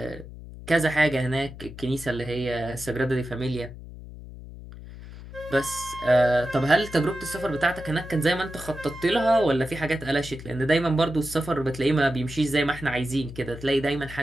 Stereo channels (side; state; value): left; noise; hum, 14 dB below the sound